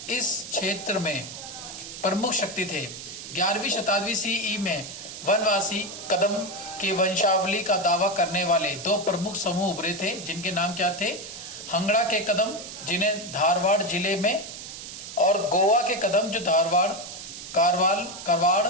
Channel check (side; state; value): right; noise; hiss, 11 dB below the sound